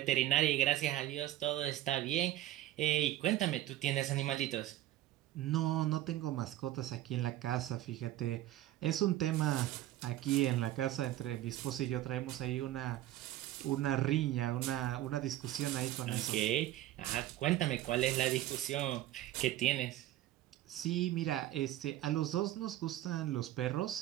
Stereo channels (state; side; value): quieter; left; 14.2 dB